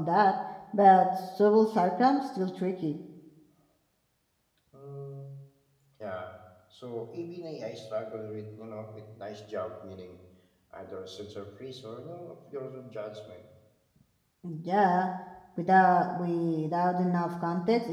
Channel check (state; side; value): identical; both; correlation 1.00